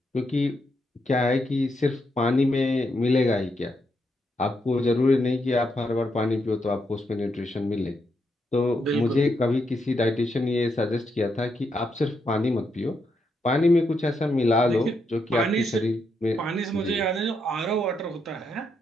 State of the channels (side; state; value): both; normal; correlation 0.80